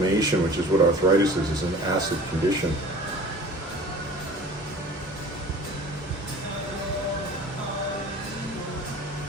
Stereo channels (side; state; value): both; normal; correlation 0.43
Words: which is what arthritis is an acid condition.